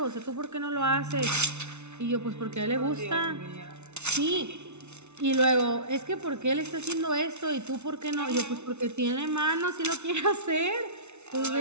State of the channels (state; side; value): late; left; 0.82 ms